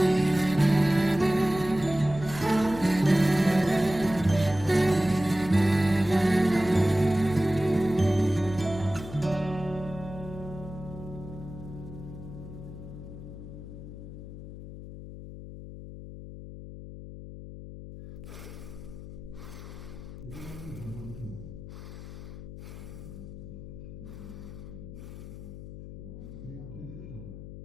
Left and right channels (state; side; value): noise; left; hum, 12 dB below the sound